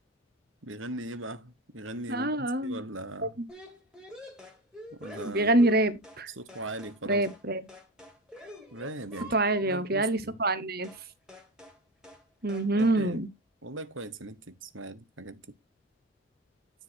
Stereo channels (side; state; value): both; normal; correlation 0.26